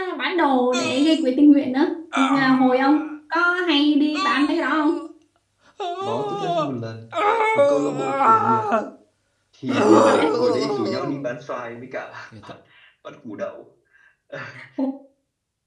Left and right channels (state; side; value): identical; both; correlation 1.00